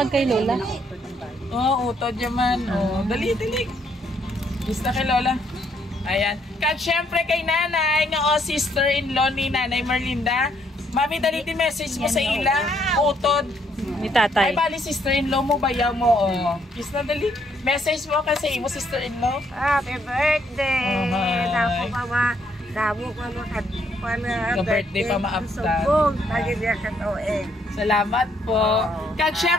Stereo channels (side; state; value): both; normal; correlation 0.71